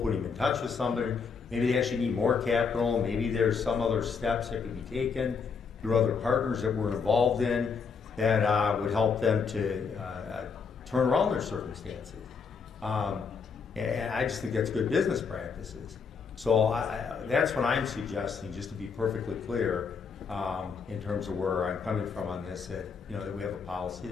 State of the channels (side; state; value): right; quieter; 5.7 dB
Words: them in touch with somebody. Maybe they actually need more capital. Maybe there's some other steps that could be taken through other partners that we're involved in that would help them to turn around their circumstances. And I just think that's good business practices. So that's what I'm suggesting, just to be perfectly clear, in terms of where I'm coming from on this, that we have a policy,